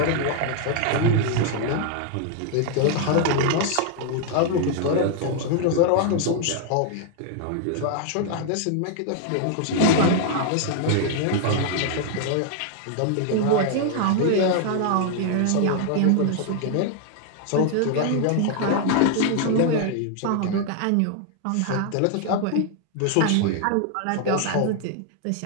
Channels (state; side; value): different; both; correlation 0.00